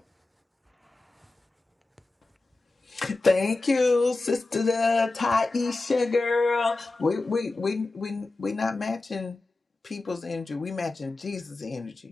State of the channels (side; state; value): right; quieter; 3.3 dB